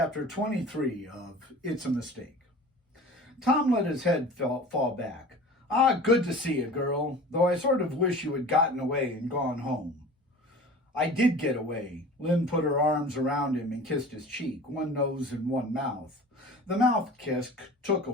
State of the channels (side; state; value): both; normal; correlation 0.40